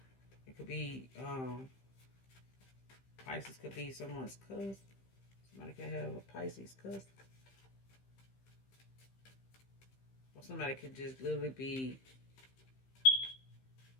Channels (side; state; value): right; late; 15 ms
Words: It could be, Pisces could be someone's cousin. Somebody could have a Pisces cousin. Or somebody could just literally be